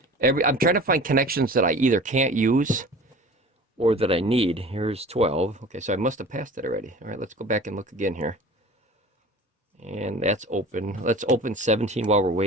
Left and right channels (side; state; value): both; normal; correlation 0.40